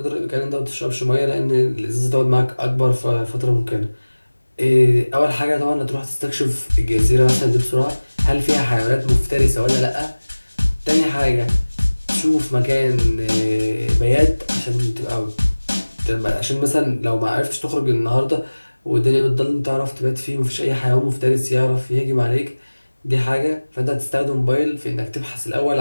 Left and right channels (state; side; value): inverted; both; correlation -1.00